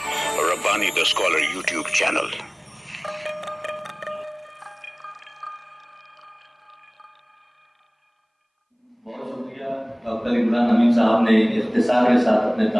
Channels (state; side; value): identical; both; correlation 1.00